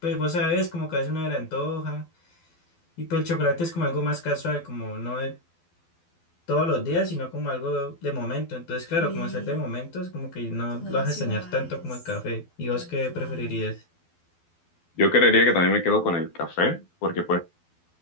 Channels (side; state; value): right; late; 12 ms